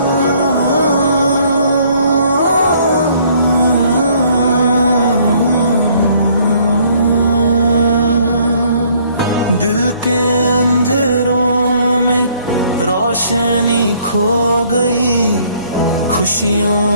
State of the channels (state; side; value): inverted; both; correlation -0.62